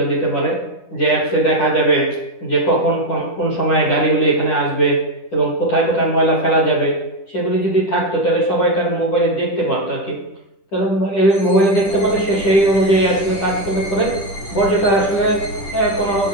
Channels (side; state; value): right; late; 10 ms